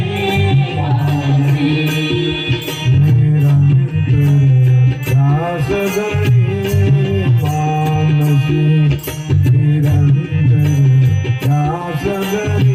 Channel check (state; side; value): identical; both; correlation 1.00